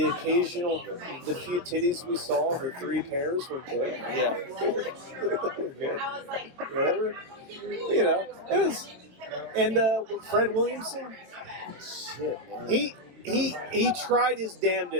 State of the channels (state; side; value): late; left; 22 ms